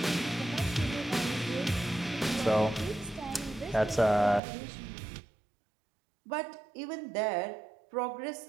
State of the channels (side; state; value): left; drops out; at 4.4 s